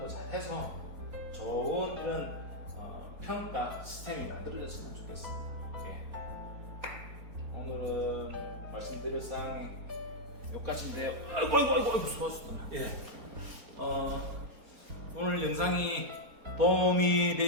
잘 해서 좋은 이런 평가 시스템이 만들어졌으면 좋겠습니다. 오늘은 말씀드릴 사항이 여기까지인데요. 아이고 수고하셨다. 오늘 영상이 도움이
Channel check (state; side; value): late; left; 4.3 ms